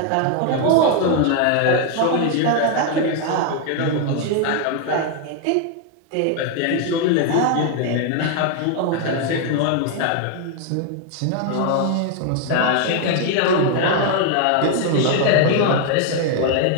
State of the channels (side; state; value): both; different; correlation 0.00